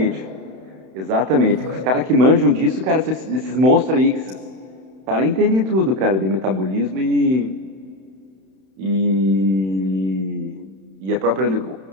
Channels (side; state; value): left; late; 31 ms